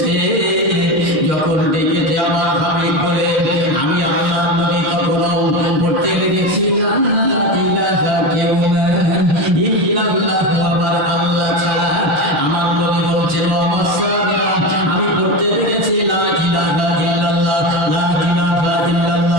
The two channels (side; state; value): left; late; 6.7 ms